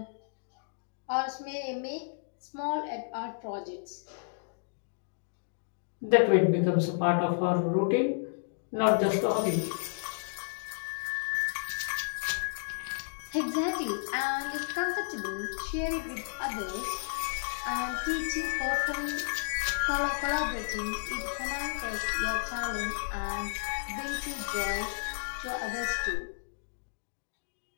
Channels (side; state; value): right; silent; digital silence